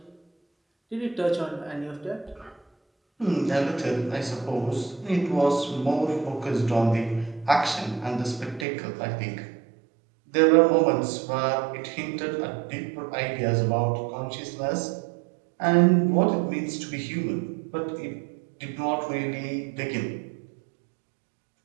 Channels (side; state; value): left; drops out; at 8.7 s